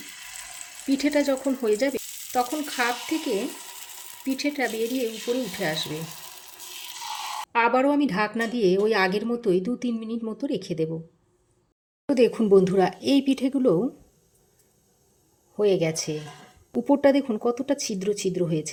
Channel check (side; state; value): both; identical; correlation 1.00